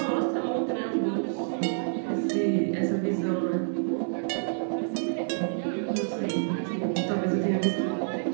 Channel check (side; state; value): left; silent; 59 dB below the other